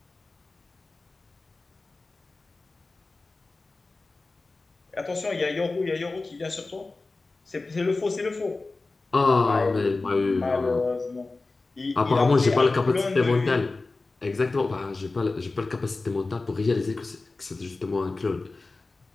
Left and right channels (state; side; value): quieter; right; 3.5 dB